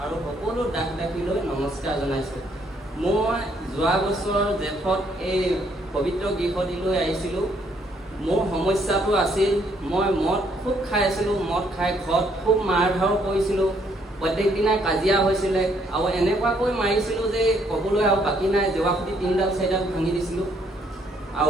আৰু সকলো দাস দাসীলৈ নমস্কাৰ জনাইছোঁ। মই যোৱা বছৰ জেঠত এই পবিত্ৰ গৃহটিলৈ আহিছিলোঁ। মোৰ সমস্যাটো আছিল মই মদ খুব খাই আছিলোঁ। মদ খাই ঘৰত খুব মাৰ ধৰ কৰিছিলোঁ। প্ৰত্যেক দিনাই কাজিয়া হৈছিলে আৰু এনেকুৱাকৈ মাৰিছিলোঁ যে ক'বলৈ আৰু বাকী নাই। জেৱাখুটি 3ডাল 4ডাল ভাঙি দিছিলোঁ।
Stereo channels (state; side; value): normal; both; correlation 0.69